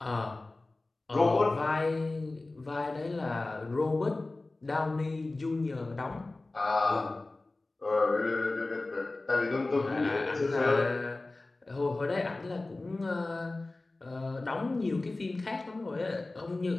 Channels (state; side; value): quieter; right; 3.1 dB